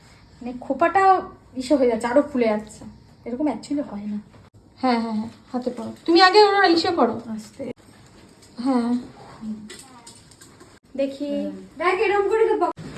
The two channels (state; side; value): identical; both; correlation 1.00